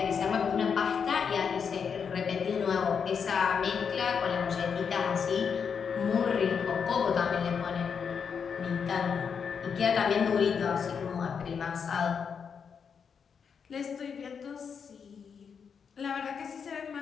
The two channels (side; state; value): right; quieter; 6.6 dB